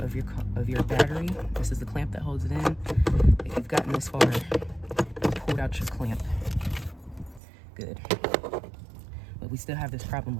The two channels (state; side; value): drops out; left; at 7.4 s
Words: your battery. This is the clamp that holds it in. If you've gotten this far, you pulled out your clamp. Good. But we still have this problem